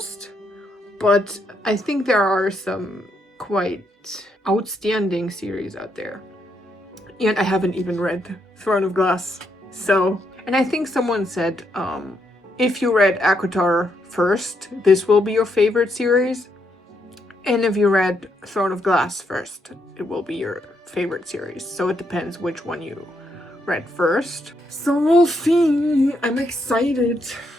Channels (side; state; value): both; normal; correlation 0.77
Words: But I think there are some quite outstanding series out there. And I haven't even read Throne of Glass. So, and I think someone said, if you read ACOTAR first, this will be your favorite series. And if you read Throne of Glass first, it will be your favorite series. So it depends which one you read first. So we'll see. I'm excited.